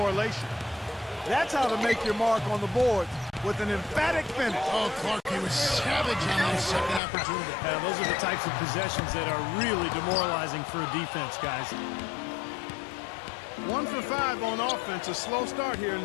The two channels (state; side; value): drops out; right; at 7.0 s